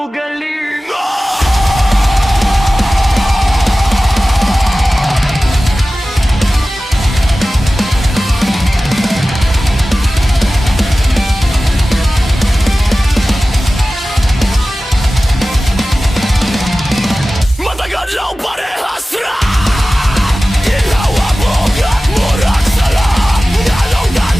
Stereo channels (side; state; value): both; normal; correlation 0.96